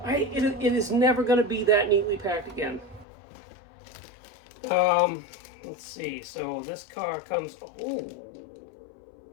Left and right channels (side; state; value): right; drops out; at 3.1 s